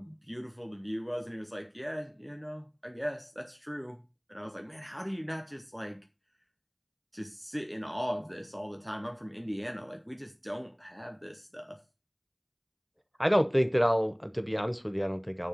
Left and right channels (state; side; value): identical; both; correlation 1.00